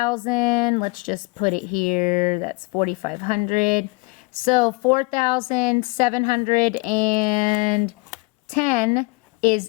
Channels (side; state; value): right; quieter; 26.5 dB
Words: let's just put it here, that's 4,500. So 4,710